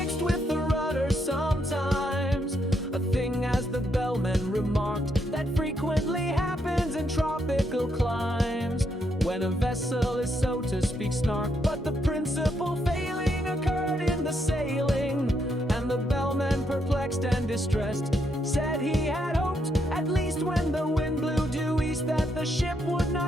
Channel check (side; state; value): both; normal; correlation 0.77